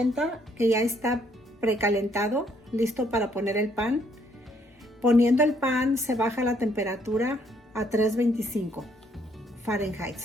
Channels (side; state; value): both; normal; correlation 0.68